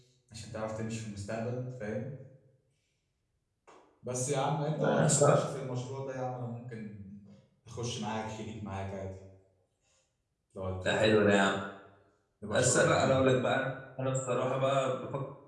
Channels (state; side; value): identical; both; correlation 1.00